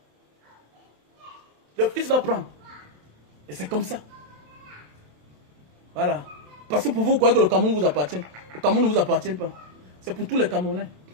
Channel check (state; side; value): late; left; 27 ms